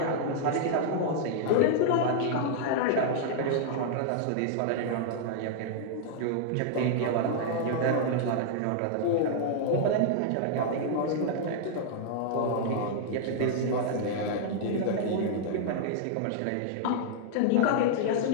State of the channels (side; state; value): both; different; correlation -0.01